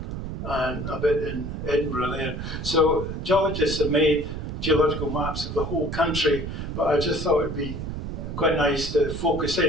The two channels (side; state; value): right; noise; rumble, 6 dB below the sound